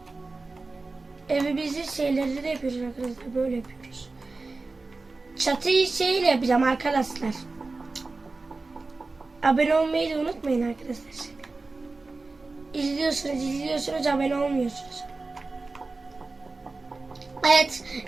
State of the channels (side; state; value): left; quieter; 3.6 dB